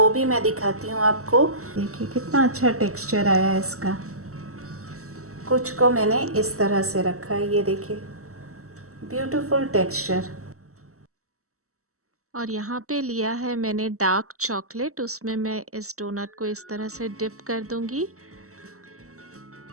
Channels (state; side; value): late; left; 0.64 ms